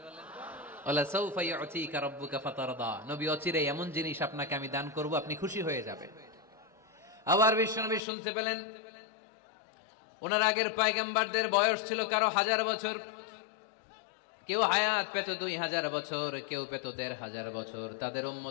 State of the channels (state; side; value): drops out; right; at 8.0 s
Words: নবী অচিরে এমন জিনিস আপনাকে আমি দান করব, আপনি খুশি হয়ে যাবেন। আবার বিশ্বনবী শুনতে পেলেন ওনার আগের পয়গম্বরদের বয়স ছিল কারো 1000 বছর, কেউ হায়াত পেত 2000 বছর, কেউ পেত 1500 বছর। তাদের